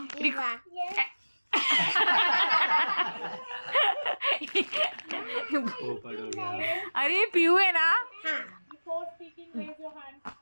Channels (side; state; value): both; inverted; correlation -1.00